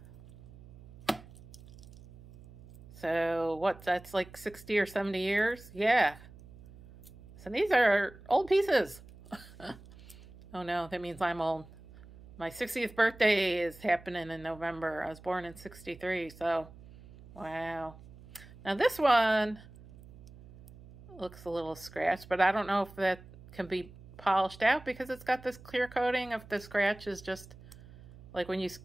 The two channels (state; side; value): noise; right; hum, 20 dB below the sound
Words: So what, that's like 60 or 70 years? Yeah. So these are old pieces. Oh no, that means I'm old. My 60th birthday is happening in November. I was born in 63, so wow. Now this one looks a little scratched, but I don't know if that can be polished out because it's got this clear coating. If the scratch is just like when you